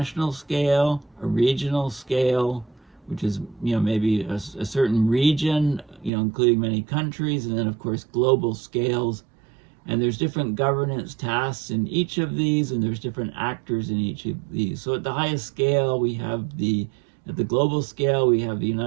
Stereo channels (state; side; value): drops out; left; at 6.1 s